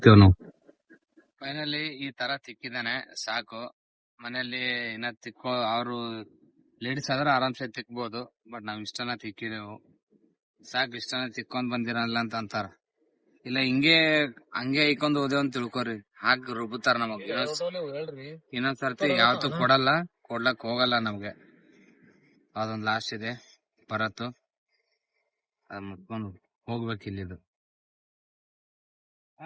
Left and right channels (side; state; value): both; identical; correlation 1.00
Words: ನಾವು. ಫೈನಲಿ ಈ ತರ ತಿಕ್ಕಿದಾನೆ ಸಾಕು. ಮನೆಯಲ್ಲಿ ಇನ್ನ ತಿಕ್ಕೋ ಅವರು ಲೇಡೀಸ್ ಆದ್ರೆ ಆರಾಮ್ಸೆ ತಿಕ್ಬೋದು. ಬಟ್ ನಾವ್ ಇಷ್ಟನ ತಿಕ್ಕಿದೆವು ಸಾಕು. ಇಷ್ಟನ ತಿಕ್ಕೊಂಡ್ ಬಂದಿರಲ್ಲ ಅಂತ ಅಂತಾರ. ಇಲ್ಲ ಹಂಗೆ ಐಕೊಂಡ್ ಹೋದೇವ್ ಅಂತ ತಿಳ್ಕೊರಿ, ಹಾಕ್ ರುಬ್ಬುತ್ತಾರ ನಮಗ್. ಇನ್ನೊಂದ್ ಸರ್ತಿ ಯಾವತ್ತೂ ಕೊಡ್ಲಕ್ ಹೋಗಲ್ಲ ನಮ್ಗೆ. ಅದೊಂದ್ ಲಾಸ್ಟ್ ಇದೆ ಬರತ್ತು, ಅದ್ ಮುಟ್ಕೊಂಡು ಹೋಗ್ಬೇಕು ಇಲ್ಲಿದು.